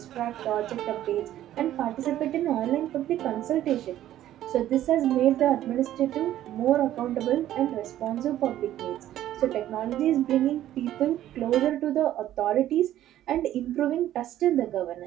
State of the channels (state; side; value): quieter; left; 12.7 dB